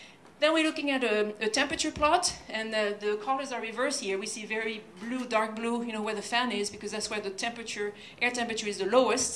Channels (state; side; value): identical; both; correlation 1.00